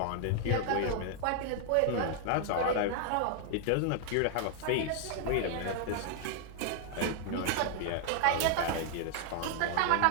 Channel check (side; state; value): both; different; correlation 0.00